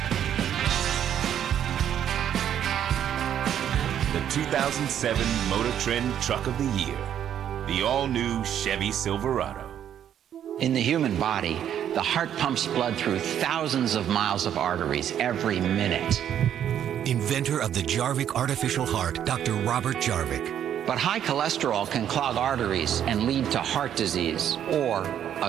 The 2007 Motor Trend Truck of the Year. The all-new Chevy Silverado. In the human body, the heart pumps blood through thousands of miles of arteries every minute. Inventor of the Jarvik artificial heart, Dr. Robert Jarvik. But high cholesterol can clog arteries and lead to heart disease or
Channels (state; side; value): quieter; left; 9.9 dB